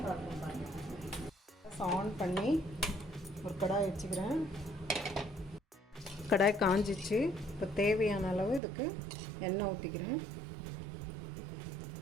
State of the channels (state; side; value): drops out; left; at 8.6 s